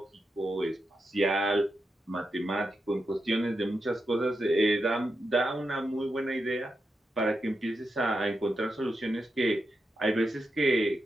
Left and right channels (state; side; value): normal; both; correlation 0.87